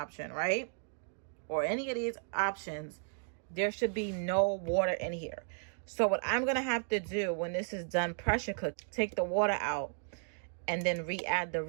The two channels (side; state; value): left; silent; digital silence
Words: right? Or any of these options, there should be no water in here. So what I'm going to have to do when this is done pressure cook, take the water out and then re-add the